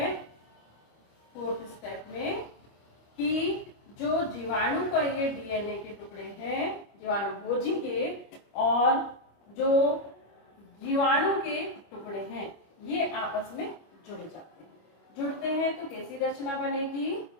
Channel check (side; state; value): right; late; 25 ms